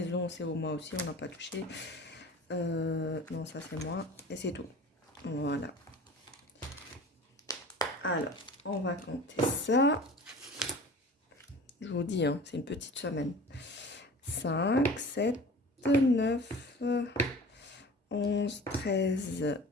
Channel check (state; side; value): normal; both; correlation 0.40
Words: c'est au mois aussi, on n'a pas touché. Non, ça c'est moi, et c'est tout. Voilà. Alors, on va compter ça. Je vous dis, hein, c'est une petite semaine. 5, 7, 9, 11, 13,